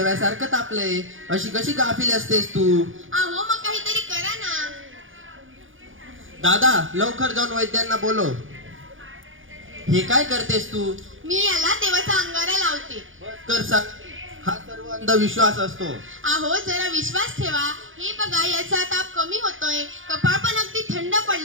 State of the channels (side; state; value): left; late; 0.58 ms